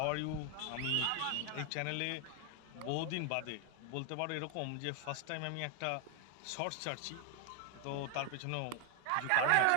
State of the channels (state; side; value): different; both; correlation 0.00